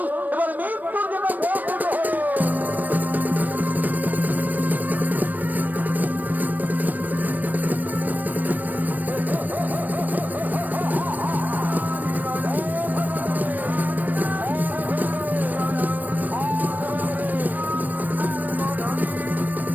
এবার মৃত্যুর জন্য প্রস্তুত হও।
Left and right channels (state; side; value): late; left; 0.085 ms